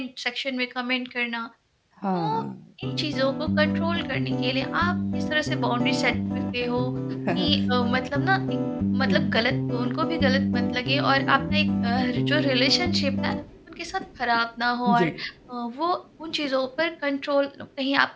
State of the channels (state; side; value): identical; both; correlation 1.00